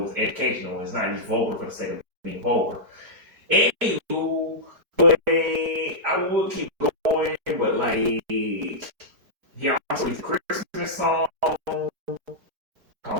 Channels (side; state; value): left; late; 4.7 ms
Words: it's educational. It's not just vulgar for the sake of being vulgar. Anywho, but I would keep going, but like, he also released a Christmas song